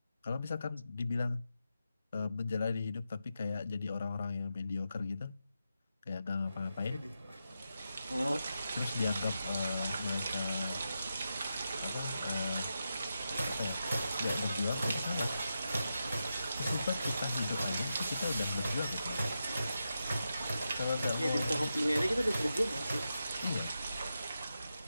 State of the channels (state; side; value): inverted; both; correlation -0.88